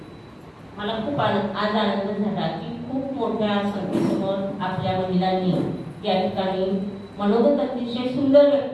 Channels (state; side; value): identical; both; correlation 1.00